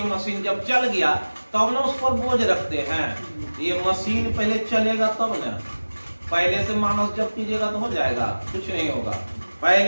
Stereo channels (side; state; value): both; inverted; correlation -1.00